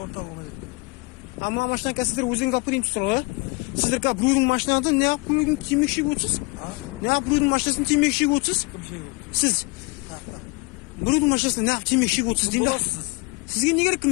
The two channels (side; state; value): right; quieter; 27.2 dB